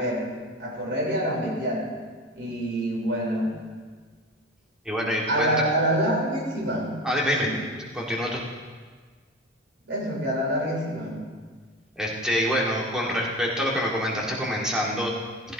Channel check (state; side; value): normal; both; correlation 0.30